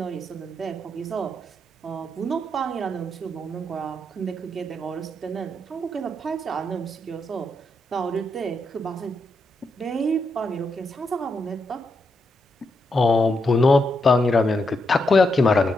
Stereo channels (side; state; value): both; normal; correlation 0.82